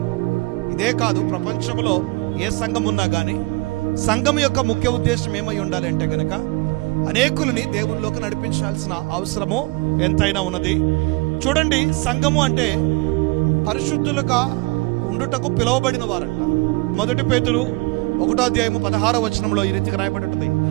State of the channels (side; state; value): left; quieter; 24.6 dB